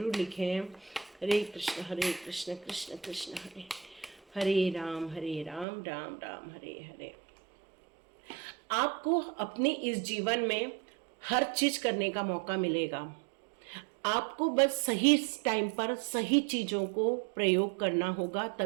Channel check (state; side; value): drops out; left; at 5.7 s